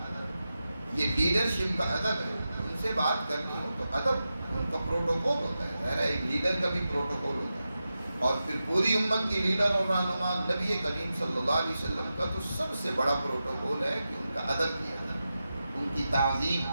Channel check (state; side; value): inverted; both; correlation -0.91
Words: یہ لیڈرشپ کا ادب ہے. ان سے بات کرنی ہو تو ادب ان کا پروٹوکول ہوتا ہے. ظاہر ہے ایک لیڈر کا بھی پروٹوکول ہوتا ہے. اور پھر پوری امت کی لیڈر اور رہنما نبی کریم صلی اللہ علیہ وسلم کا تو سب سے بڑا پروٹوکول ہے کہ ان کا ادب کیا جائے، ان کی تعظیم